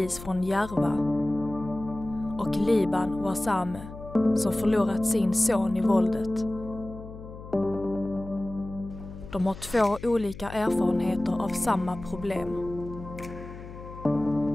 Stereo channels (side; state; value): left; noise; hum, 14 dB below the sound